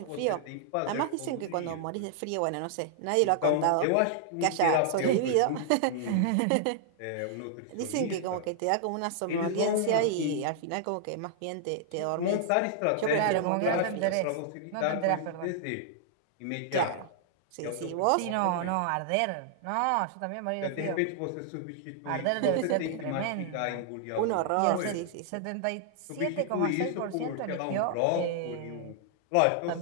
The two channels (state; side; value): different; both; correlation -0.01